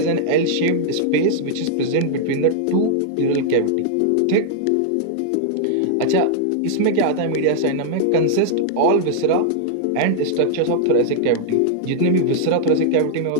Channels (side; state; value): both; different; correlation -0.01